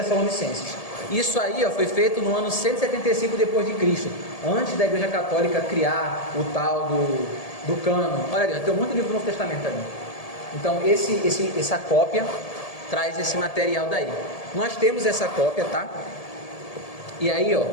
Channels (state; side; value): late; right; 1.7 ms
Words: Isso aí foi feito no ano 175 depois de Cristo, antes da Igreja Católica criar o tal do cânon. Olha ali, tem um monte de livro do Novo Testamento ali. Então essa cópia traz esse material daí. Nós temos essa cópia, tá? E aí,